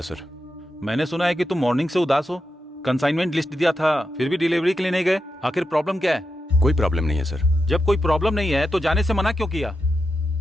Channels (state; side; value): normal; both; correlation 0.88